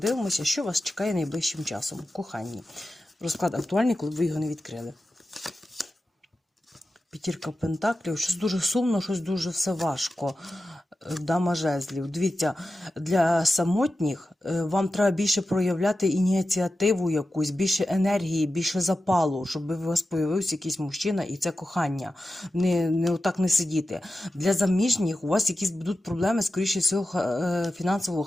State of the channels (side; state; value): both; normal; correlation 0.92